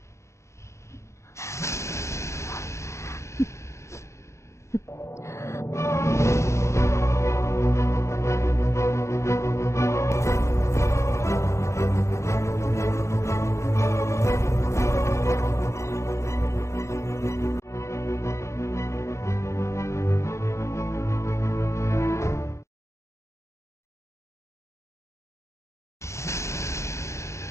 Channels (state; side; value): late; right; 0.14 ms